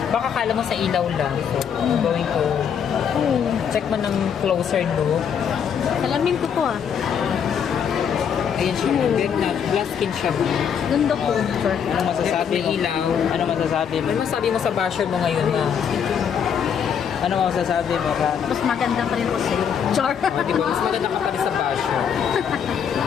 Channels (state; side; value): quieter; right; 7.7 dB